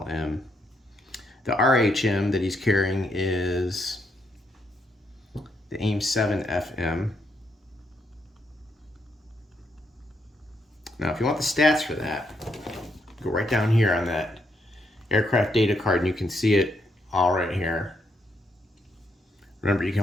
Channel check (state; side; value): normal; both; correlation 0.77